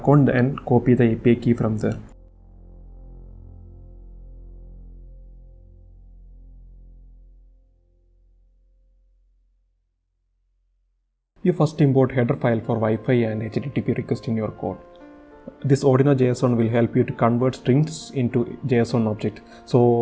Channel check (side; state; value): both; identical; correlation 1.00